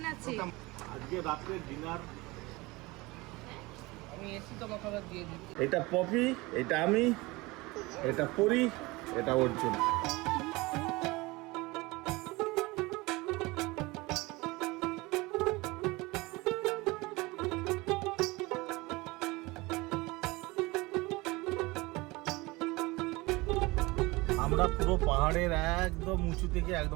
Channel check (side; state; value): left; quieter; 22.8 dB